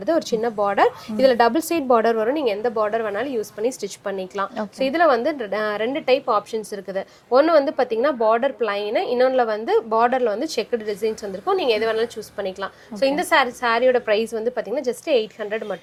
ஒரு சின்ன பார்டர். இதுல டபுள் சைட் பார்டர் வரும், நீங்க எந்த பார்டர் வேணாலும் யூஸ் பண்ணி ஸ்டிச் பண்ணிக்கலாம். ஸோ இதுல வந்து ரெண்டு டைப் ஆப்ஷன்ஸ் இருக்குது. ஒன்று வந்து பார்த்தீங்கன்னா பார்டர் பிளைன், இன்னொன்றில் வந்து பார்டரில் வந்து செக்குடு டிசைன்ஸ் வந்திருக்கும், நீங்கள் எது வேணாலும் சூஸ் பண்ணிக்கலாம். ஸோ இந்த சாரியோட ப்ரைஸ் வந்து பார்த்தீங்கன்னா ஜஸ்ட் 800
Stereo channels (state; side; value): identical; both; correlation 1.00